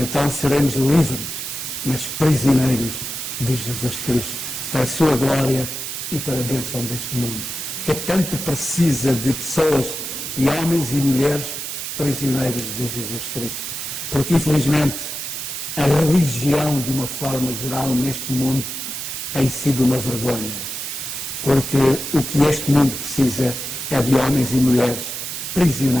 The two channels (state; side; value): noise; right; hiss, 6 dB below the sound